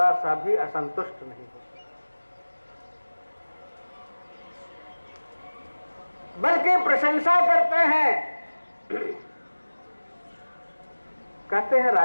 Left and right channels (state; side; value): inverted; both; correlation -1.00